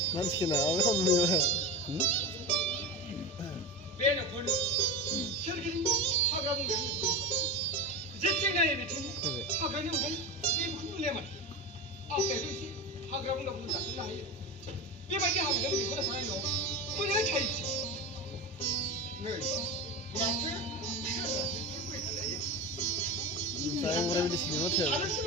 Nanskina, abi hanımıyor. Ben de konu. Şergin hagram ben. Zetçen ne biçim? Hagram ne ben? Bir kutu leman. Aferin ki hagram da bunu zaten hayır. Bir bence hagram bir kola sana yok. Bu ne çayısı? Ne? Nasıl? Saya vurabilirsin ama tabii. Arası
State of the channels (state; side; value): normal; both; correlation 0.24